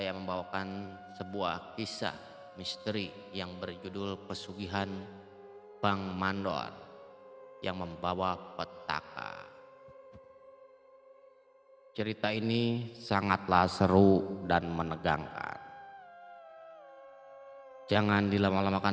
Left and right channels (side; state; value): both; identical; correlation 1.00